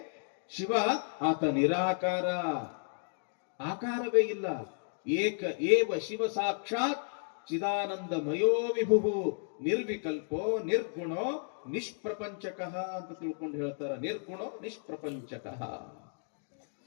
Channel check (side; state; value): right; silent; digital silence